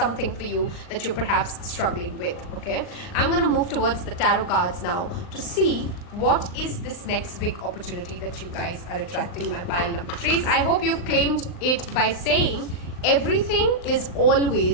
for you that you're perhaps struggling with. Okay, I'm going to move towards the tarot cards now to see what is this next big opportunity that you guys are attracting, my pile number 3s. I hope you've claimed it by saying everything is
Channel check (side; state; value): right; late; 39 ms